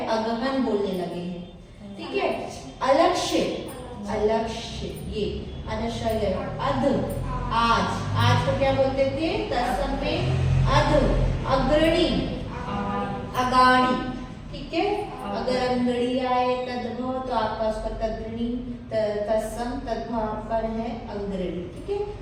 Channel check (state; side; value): identical; both; correlation 1.00